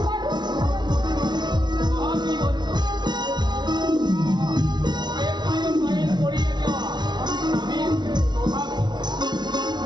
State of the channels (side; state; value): left; late; 0.20 ms